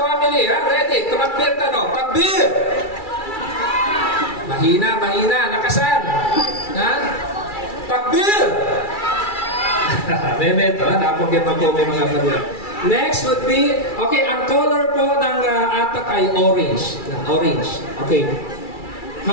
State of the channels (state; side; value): late; right; 2.3 ms